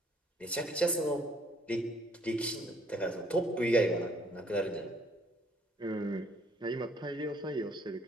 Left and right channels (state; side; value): normal; both; correlation 0.63